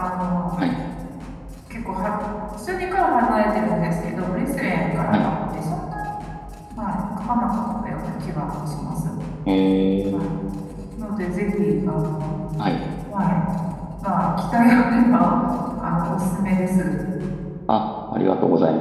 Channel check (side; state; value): both; identical; correlation 1.00